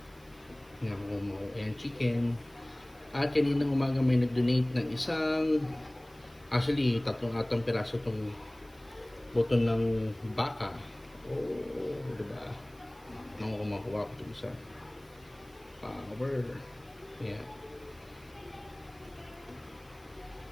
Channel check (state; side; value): noise; right; hiss, 27 dB below the sound